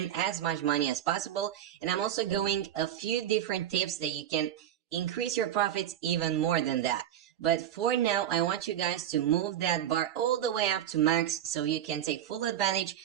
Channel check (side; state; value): left; quieter; 10.9 dB